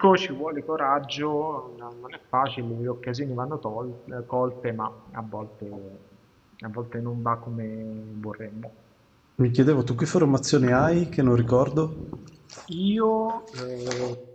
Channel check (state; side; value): identical; both; correlation 1.00